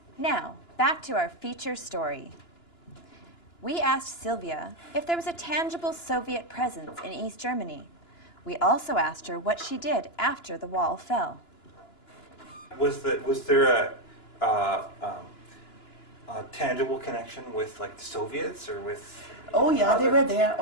Now, back to our feature story. We asked Sylvia if there was a tangible Soviet presence in East Germany. We also asked her what she did after the wall fell. Was there a tangible connection with like the Soviets or with? Oh yeah, they were there.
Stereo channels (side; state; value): right; late; 2.9 ms